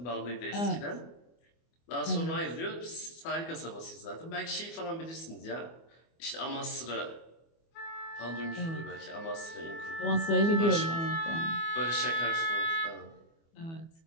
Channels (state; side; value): late; right; 24 ms